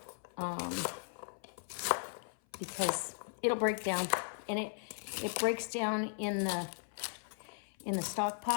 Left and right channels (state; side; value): silent; right; 53 dB below the other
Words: because it'll break down, and it breaks down in the stock